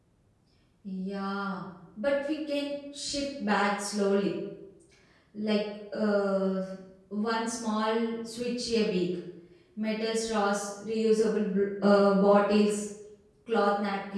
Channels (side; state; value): both; identical; correlation 1.00